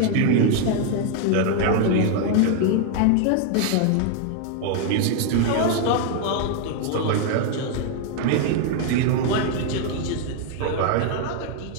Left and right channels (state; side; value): different; both; correlation 0.00